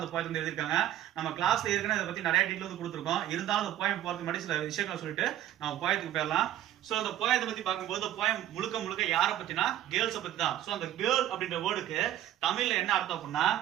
அந்த போயத்தை வந்து எழுதியிருக்காங்க. நம்ம கிளாஸ்ல ஏற்கனவே இதை பத்தி நிறைய டீட்டெயில் வந்து கொடுத்துருக்கோம். இருந்தாலும் அந்த போயம் போறதுக்கு முன்னாடி சில விஷயங்களை சொல்லிட்டு நம்ம போயத்துக்கு போயிடலாம். சோ அந்த போயத்தை பத்தி பார்க்கும்போது போயம் முழுக்க யாரை பத்தினா கேர்ள்ஸை பத்தி தான். சோ அந்த கேர்ள் அப்படின்ற வேர்டுக்கு தமிழ்ல என்ன அர்த்தம் அப்படின்னா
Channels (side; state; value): left; quieter; 12.3 dB